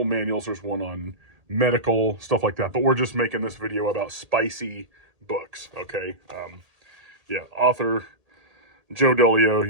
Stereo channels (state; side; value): late; left; 1.8 ms